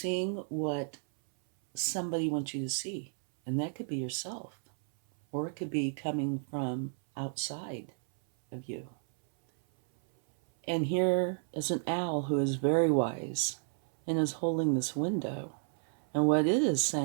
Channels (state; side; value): silent; left; 56 dB below the other